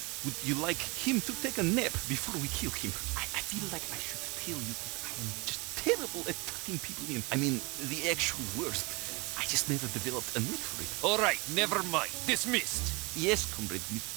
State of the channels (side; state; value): left; quieter; 27.1 dB